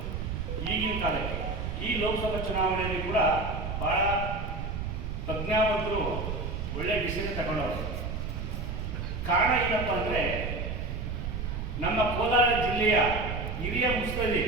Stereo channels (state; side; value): noise; right; rumble, 4 dB below the sound